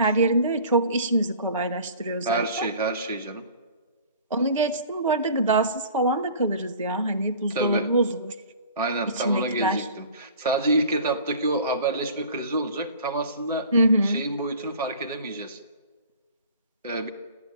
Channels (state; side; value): inverted; both; correlation -0.45